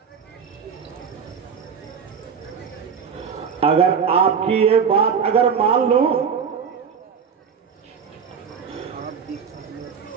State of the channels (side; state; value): left; quieter; 6.7 dB